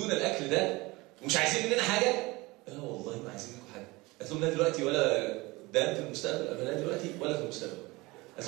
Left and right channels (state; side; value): quieter; left; 22.4 dB